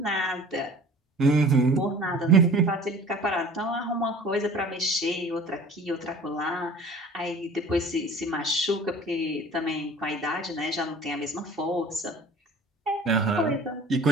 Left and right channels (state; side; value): normal; both; correlation 0.45